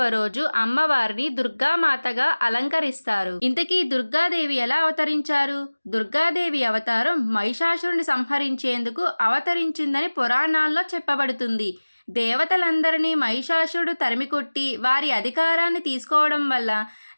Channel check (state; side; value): inverted; both; correlation -1.00